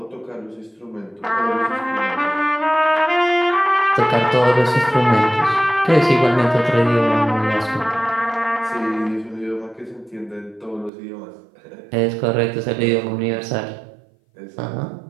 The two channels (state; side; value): drops out; left; at 10.9 s